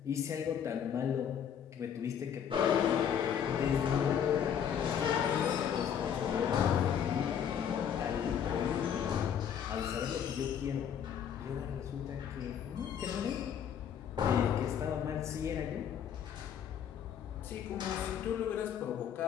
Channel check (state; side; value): quieter; right; 8.5 dB